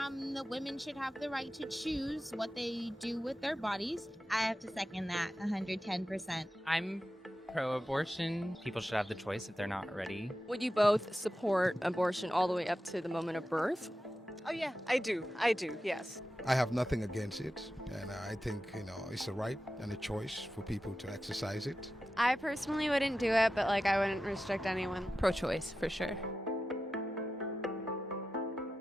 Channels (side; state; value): both; normal; correlation 0.92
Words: the women should have the right to choose what they do with their bodies. I have to second that 110%. I'm pro-abortion. People should have the choice if they're not ready. Would you both support abortion all the way up to the moment of birth? Oh yeah, I do, yes. I have nothing against it, and I think, it's a right and a choice for people to exercise it. I personally wouldn't do it, but I wouldn't restrict anyone. Pro-choice, for sure.